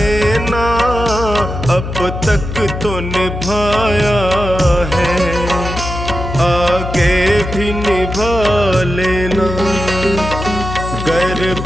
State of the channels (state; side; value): noise; left; hum, 6 dB below the sound